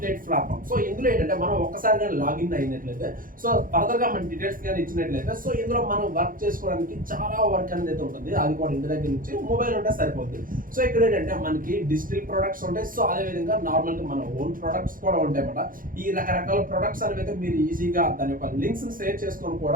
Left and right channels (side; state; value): left; late; 0.40 ms